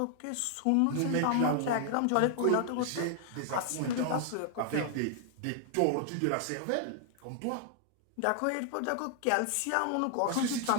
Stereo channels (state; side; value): different; both; correlation 0.00